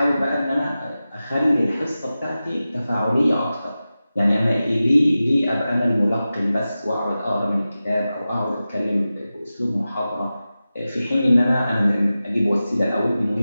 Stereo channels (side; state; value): both; inverted; correlation -0.94